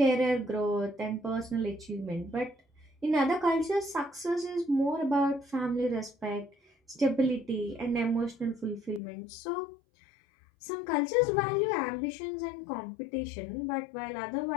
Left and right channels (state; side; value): drops out; right; at 9.0 s